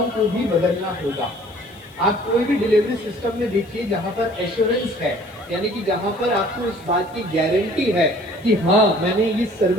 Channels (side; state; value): left; noise; hiss, 29 dB below the sound